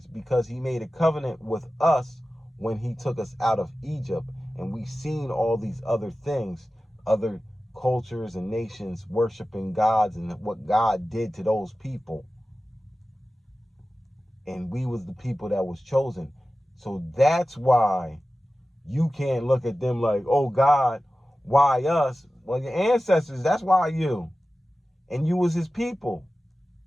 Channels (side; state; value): both; normal; correlation 0.95